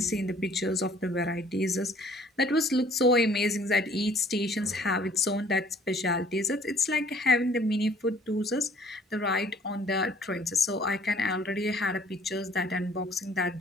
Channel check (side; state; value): both; normal; correlation 0.56